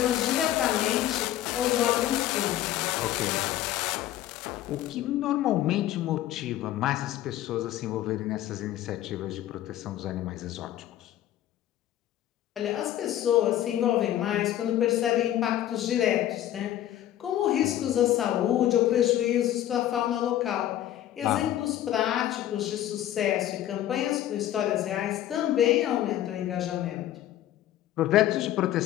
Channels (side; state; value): right; quieter; 12.8 dB